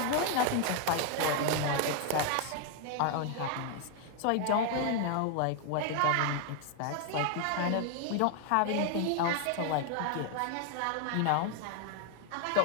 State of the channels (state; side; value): different; both; correlation 0.00